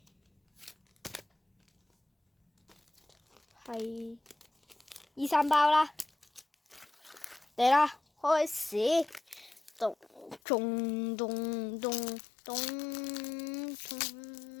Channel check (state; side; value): drops out; right; at 10.4 s